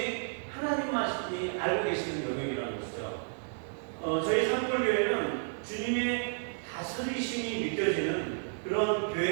하나님만이 알고 계시는 영역이라는 것이죠. 저희 산골교회는 주님의 다스리심이 느껴지는 그런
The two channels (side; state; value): left; silent; digital silence